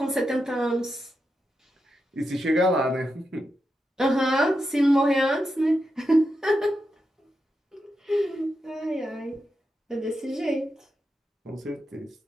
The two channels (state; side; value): normal; both; correlation 0.87